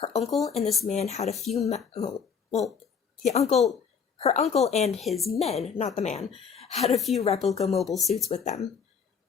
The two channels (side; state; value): right; quieter; 6.5 dB